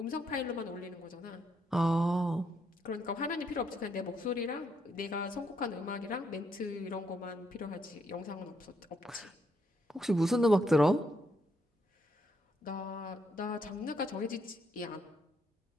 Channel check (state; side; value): normal; both; correlation 0.76